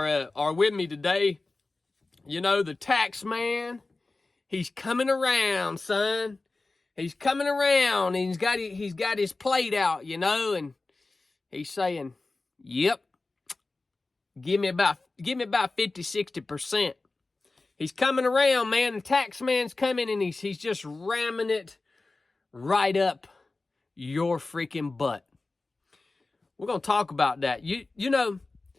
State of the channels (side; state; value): right; quieter; 3.4 dB